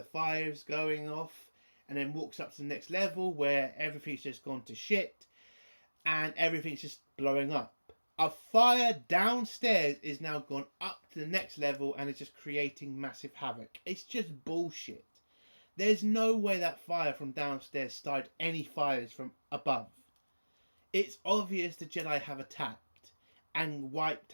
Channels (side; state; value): both; inverted; correlation -1.00